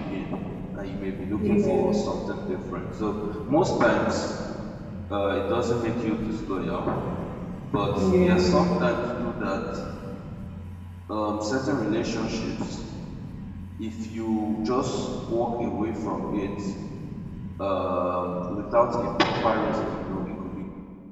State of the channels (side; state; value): both; identical; correlation 1.00